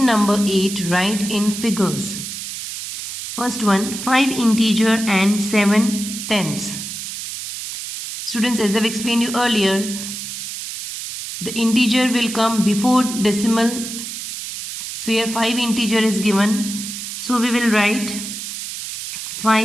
number 8, write in figures. First one, 5 integer and 7 tenths. Students, as I've explained you earlier, the integer will come before decimal. So here 5 integer is given. So we will write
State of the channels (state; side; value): noise; right; hiss, 7 dB below the sound